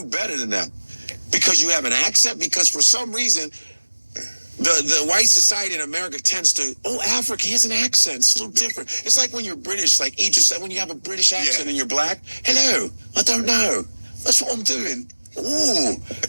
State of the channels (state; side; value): inverted; both; correlation -1.00